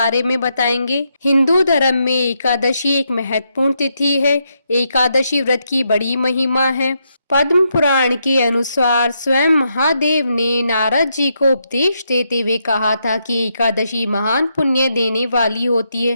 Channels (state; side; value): inverted; both; correlation -0.80